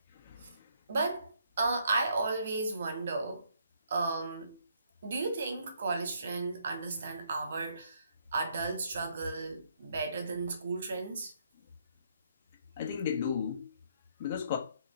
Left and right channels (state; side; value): inverted; both; correlation -0.70